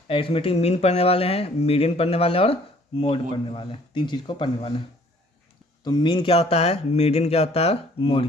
अरिथमेटिक मीन पढ़ने वाले हैं, मीडियन पढ़ने वाले हैं और मोड पढ़ने वाले हैं। 3 चीज़ को पढ़ने वाले हैं। तो मीन क्या होता है, मीडियन क्या होता है,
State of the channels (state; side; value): normal; both; correlation 0.58